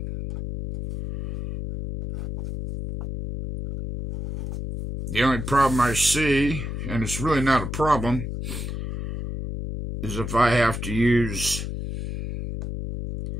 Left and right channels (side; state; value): left; noise; hum, 5 dB below the sound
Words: The only problem I see, and it's really not a problem, is if I have to use